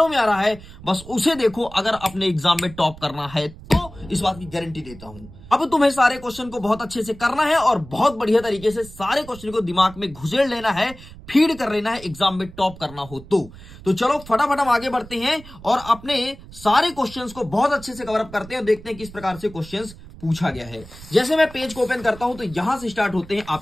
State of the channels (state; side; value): noise; right; rumble, 18 dB below the sound